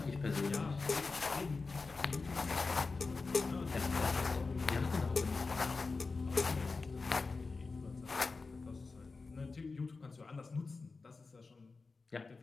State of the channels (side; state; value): right; quieter; 4.1 dB